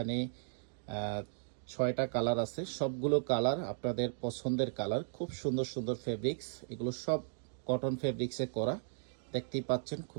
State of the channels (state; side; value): silent; left; digital silence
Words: 6টা কালার আছে, সবগুলো কালার আপনাদের পছন্দের কালার। খুব সুন্দর সুন্দর ফেব্রিক্স, এগুলো সব কটন ফেব্রিক্সে করা। দেখতেই পাচ্ছেন